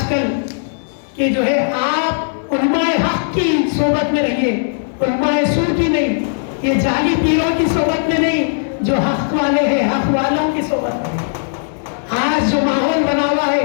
کل کہ جو ہے آپ علماء حق کی صحبت میں رہیے، علماء سو کی نہیں، یہ جعلی پیروں کی صحبت میں نہیں، جو حق والے ہیں حق والوں کی صحبت میں. آج جو ماحول بنا ہوا ہے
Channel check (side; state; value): right; silent; digital silence